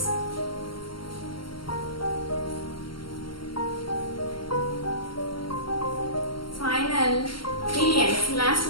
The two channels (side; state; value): right; late; 0.73 ms